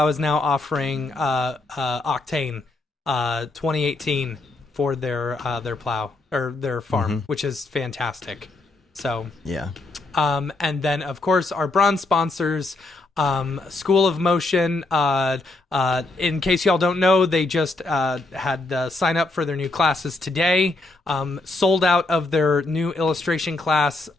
is now offering Octane 2018 for their plow or their farm, which is fantastic. So yeah. And then of course our bronze sponsors, School of Motion. In case y'all don't know, they just had sign up for their new classes today. Sold out of their new illustration class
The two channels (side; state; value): right; quieter; 3.1 dB